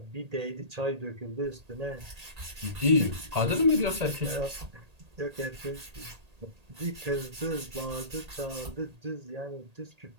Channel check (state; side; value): late; left; 1.8 ms